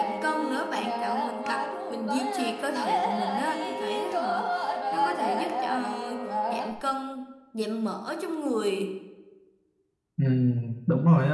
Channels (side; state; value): both; identical; correlation 1.00